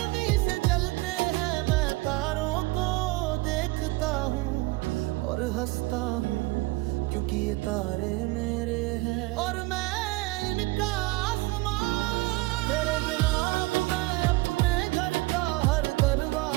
से जलते हैं। मैं तारों को देखता हूँ और हंसता हूँ क्योंकि ये तारे मेरे हैं और मैं इनका आसमान। तेरे बिना अब मैं अपने घर का हर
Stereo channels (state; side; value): quieter; left; 22.0 dB